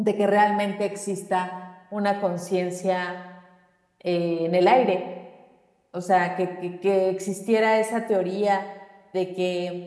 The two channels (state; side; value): identical; both; correlation 1.00